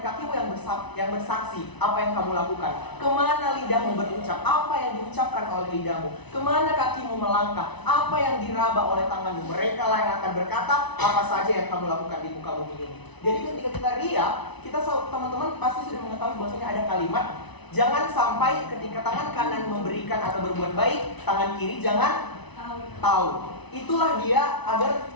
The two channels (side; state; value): right; late; 1.0 ms